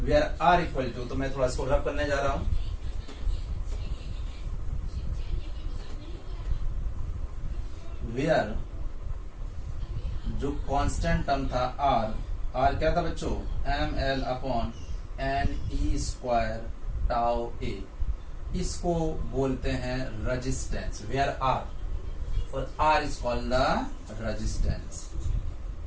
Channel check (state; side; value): identical; both; correlation 1.00